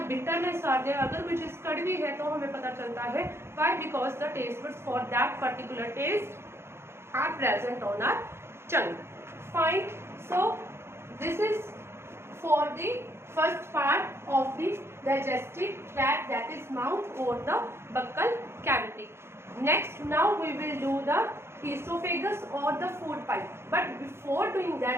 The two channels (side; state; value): left; late; 0.12 ms